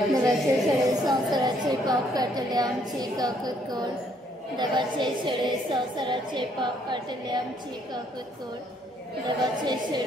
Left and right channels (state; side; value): normal; both; correlation 0.67